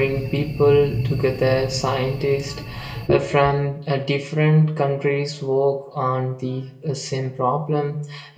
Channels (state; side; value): identical; both; correlation 1.00